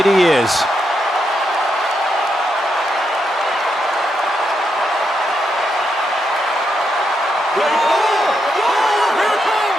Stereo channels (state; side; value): normal; both; correlation 0.82